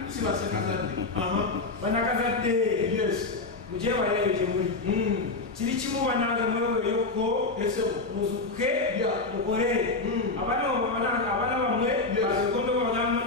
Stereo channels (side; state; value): right; quieter; 3.5 dB